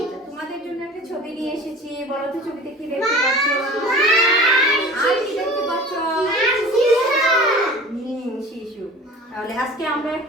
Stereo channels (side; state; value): both; normal; correlation 0.42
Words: তোমাদের জন্য একটা ছবি নিয়ে এসেছি। বলো তো ছবিতে কি দেখতে পাচ্ছ? আর কি দেখতে পাচ্ছ? শিশু। তাহলে আজকে আমরা